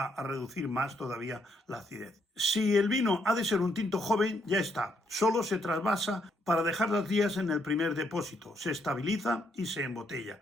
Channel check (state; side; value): normal; both; correlation 0.74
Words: a reducir más todavía la acidez. Si el vino ha de ser un tinto joven, ya está. Solo se trasvasa para dejar los días en el primer depósito. Se estabiliza y se